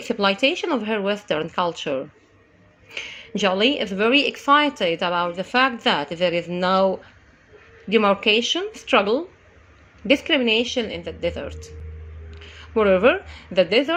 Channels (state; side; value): identical; both; correlation 1.00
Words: of her Western culture. Jolie is very excited about the fact that there is no demarcation, struggle, discrimination in the desert. Moreover, the